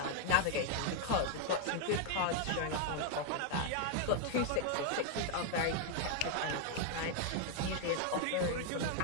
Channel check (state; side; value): different; both; correlation 0.00